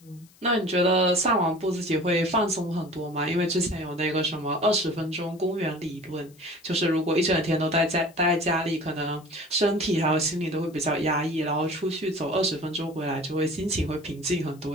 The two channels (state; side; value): noise; left; hiss, 28 dB below the sound